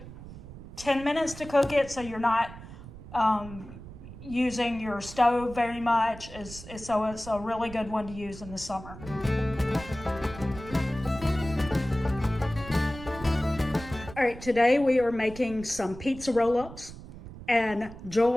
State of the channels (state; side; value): noise; right; rumble, 14 dB below the sound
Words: 10 minutes to cook it, so you're not using your stove very much. So it's a really good one to use in the summer. All right, today we are making some pizza roll-ups, and